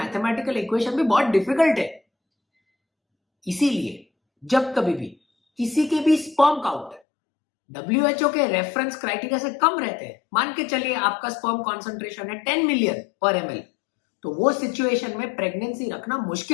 इक्वेशन भी बहुत डिफिकल्ट है. इसीलिए जब कभी भी किसी के भी स्पर्म काउंट WHO के रेफरेंस क्राइटेरिया से कम रहते हैं, मान के चलिए आपका स्पर्म कॉन्सेंट्रेशन है 10 मिलियन पर ml, तो वो सिचुएशन में प्रेगनेंसी रखना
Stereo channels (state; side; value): drops out; right; at 7.0 s